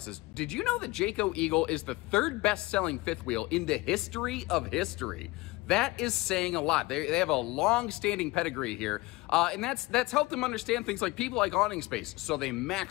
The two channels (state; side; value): quieter; right; 21.5 dB